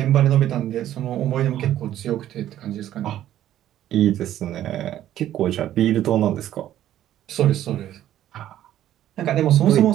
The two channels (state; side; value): quieter; left; 12.3 dB